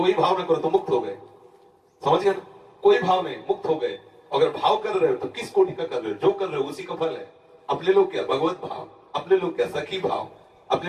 भाव न करो तो मुक्त हो गए। समझ गए ना, कोई भाव नहीं, मुक्त हो गए। अगर भाव कर रहे हो तो किस कोटि का कर रहे हो, जो कर रहे हो उसी का फल है। अपने लोग क्या भगवत भाव, अपने लोग क्या सखी भाव,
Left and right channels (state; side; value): identical; both; correlation 1.00